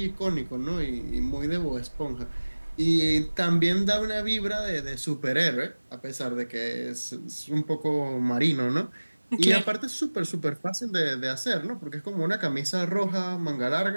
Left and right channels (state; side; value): inverted; both; correlation -1.00